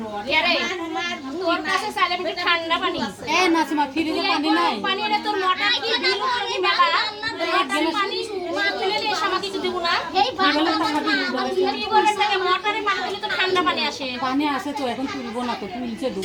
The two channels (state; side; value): identical; both; correlation 1.00